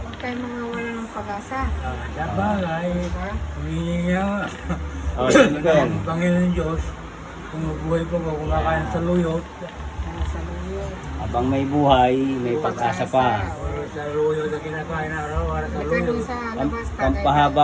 tayo mga wala ng pag-asa. Dabagay, Diba? humingi nga. Oh, Jennifer. Ang Panginoon Diyos, kung mabuhay pa ko, kumakain sa luyot, Sa luyo. Habang may buhay, may pag-asa pa. or sa luyot na kinakain araw-araw sa Halika dun luyot. sa labas. tagay Pampahaba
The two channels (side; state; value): both; identical; correlation 1.00